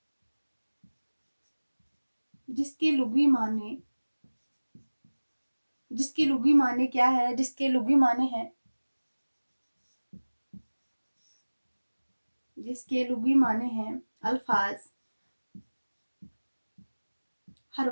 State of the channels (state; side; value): inverted; both; correlation -1.00